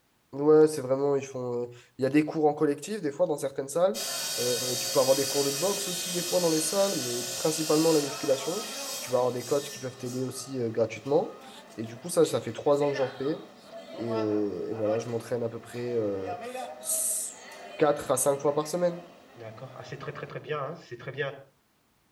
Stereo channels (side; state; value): both; identical; correlation 1.00